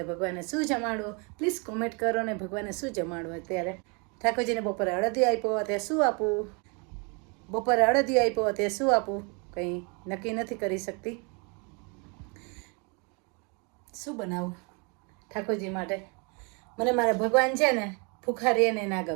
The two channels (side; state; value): left; quieter; 33.3 dB